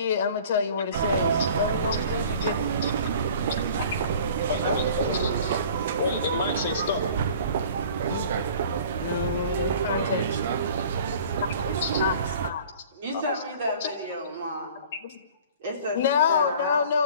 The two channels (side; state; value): both; inverted; correlation -0.46